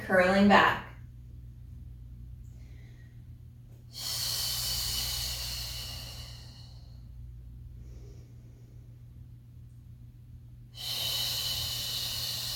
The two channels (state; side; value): identical; both; correlation 1.00